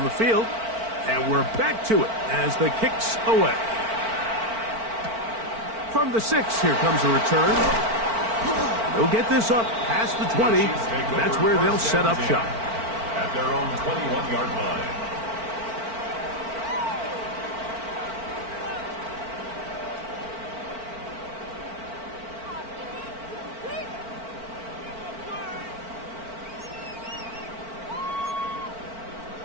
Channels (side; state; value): left; late; 4.5 ms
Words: the field, and we're back to it as the kick's away. From the 6, here comes a return. They'll get this up past the 20. That's where they'll set up shop. At their own 21-yard line.